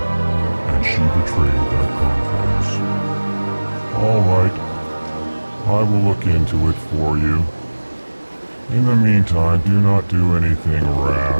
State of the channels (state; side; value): inverted; both; correlation -1.00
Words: and she betrayed that confidence. All right. I will look into it for you. In the meantime, do not do anything